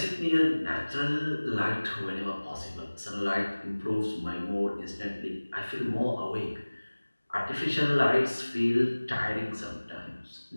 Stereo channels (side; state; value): both; inverted; correlation -1.00